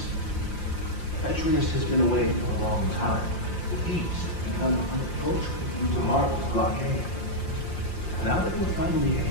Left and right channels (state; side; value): late; right; 5.7 ms